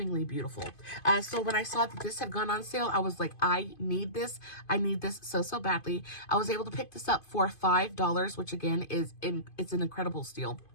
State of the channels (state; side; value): late; right; 2.5 ms